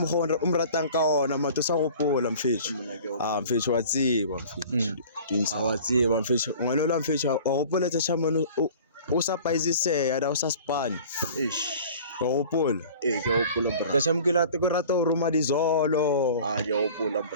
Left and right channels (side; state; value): both; inverted; correlation -0.44